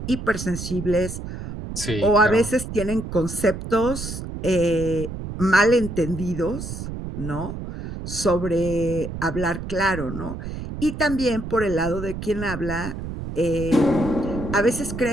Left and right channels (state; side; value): noise; right; rumble, 8 dB below the sound